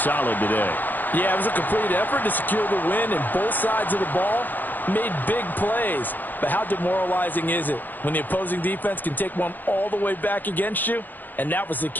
today. Yeah, it was a complete effort to secure the win, and both sides of the ball made big plays. But how demoralizing is it when the opposing defense can take one all the way back against you? And that was the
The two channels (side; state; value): right; late; 0.086 ms